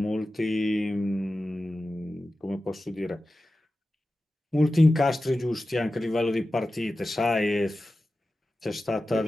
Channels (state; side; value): normal; both; correlation 0.94